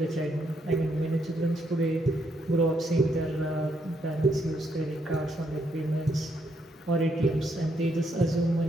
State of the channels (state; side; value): normal; both; correlation 0.75